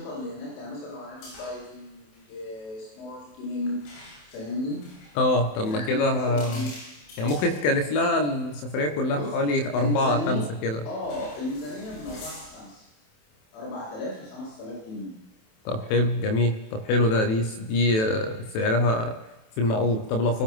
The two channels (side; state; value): right; late; 27 ms